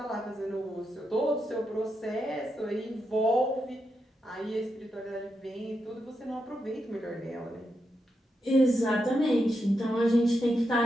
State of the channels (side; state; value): both; normal; correlation 0.85